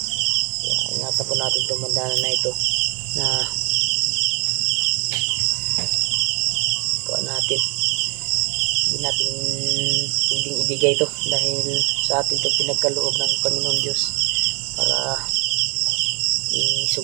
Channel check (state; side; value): quieter; left; 33.1 dB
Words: Kaya ingatan po natin itong bandana na ito na kuha natin. Hindi natin pwedeng ibigay ito, dahil sa atin ito pinagkaloob ng Panginoon Diyos para